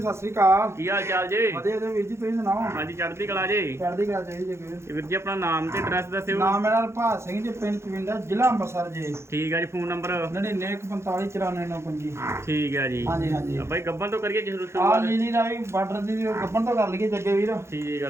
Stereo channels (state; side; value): late; left; 0.13 ms